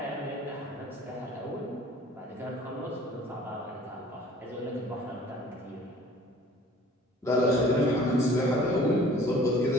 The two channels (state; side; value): normal; both; correlation 0.50